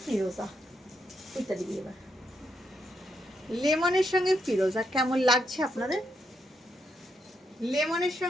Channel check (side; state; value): both; normal; correlation 0.79